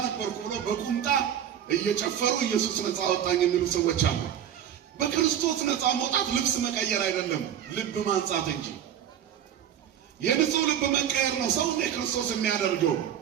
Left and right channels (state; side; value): quieter; left; 9.7 dB